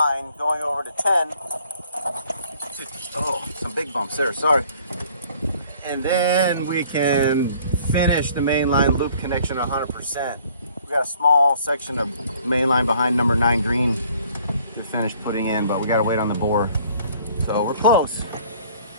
going over to 10. Oh, some big bumps there, sorry. And then we can finish the mainline loop connection 100%. We got a small section of mainline behind number 9 green to finish putting in, but we gotta wait on the bore. So we're close.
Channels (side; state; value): both; inverted; correlation -0.57